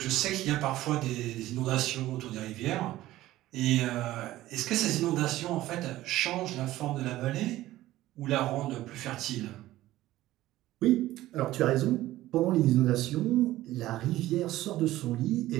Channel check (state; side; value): quieter; left; 15.7 dB